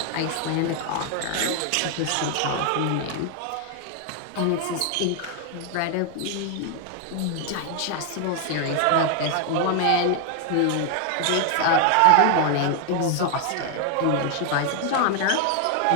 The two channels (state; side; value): different; both; correlation 0.00